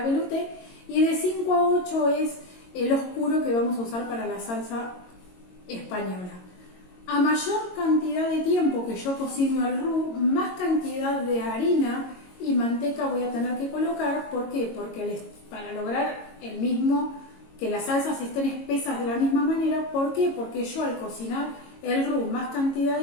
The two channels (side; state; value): right; late; 22 ms